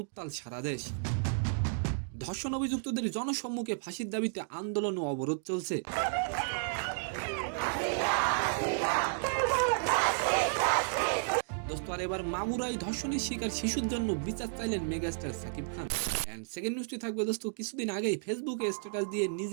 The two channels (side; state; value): left; silent; digital silence